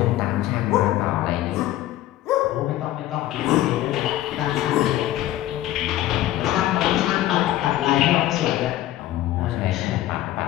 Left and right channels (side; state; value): right; quieter; 14.4 dB